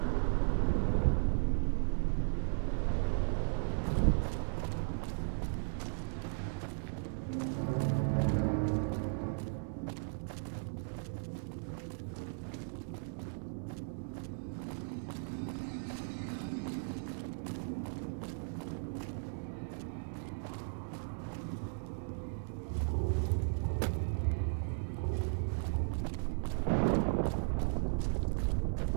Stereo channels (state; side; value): silent; left; digital silence